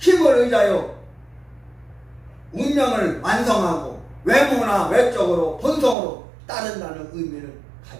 의지하여 운명을 완성하고 외모나 외적으로 본성으로 따른다는 의미를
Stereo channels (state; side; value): drops out; left; at 6.0 s